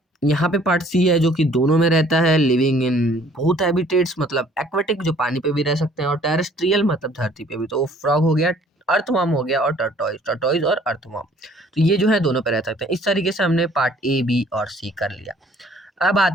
यहाँ पे पार्ट सी है जो कि दोनों में रहता है, लिविंग इन बोथ हैबिटेट्स, मतलब एक्वेटिक जो पानी पे भी रह सकते हैं, और टेरेस्ट्रियल मतलब धरती पे भी। तो फ्रॉग हो गया, अर्थवर्म हो गया, और टर्टोइज और अर्थवर्म, तो ये जो है दोनों पे रह सकते हैं। इस तरीके से हमने पार्ट ए, बी और सी कर लिया। अब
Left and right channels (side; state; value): both; normal; correlation 0.57